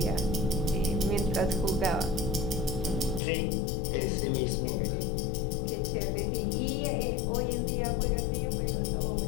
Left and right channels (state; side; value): drops out; right; at 3.2 s